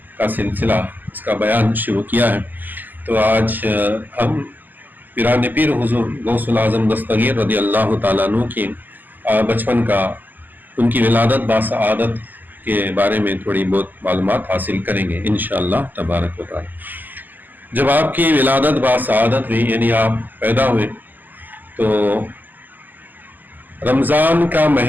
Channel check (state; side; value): late; left; 0.086 ms